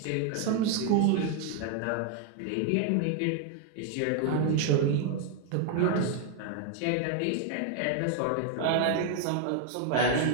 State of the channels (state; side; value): different; both; correlation 0.00